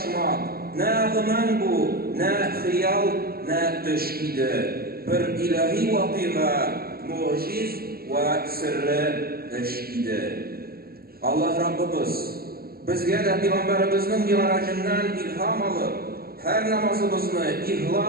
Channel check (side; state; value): left; late; 0.44 ms